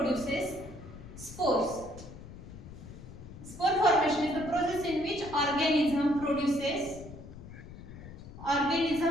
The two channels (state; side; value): noise; left; rumble, 14 dB below the sound